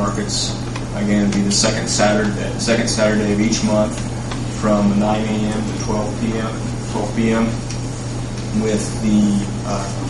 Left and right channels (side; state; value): both; identical; correlation 1.00